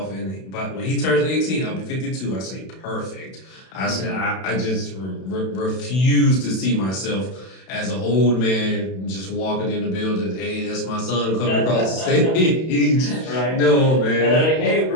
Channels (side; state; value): right; late; 32 ms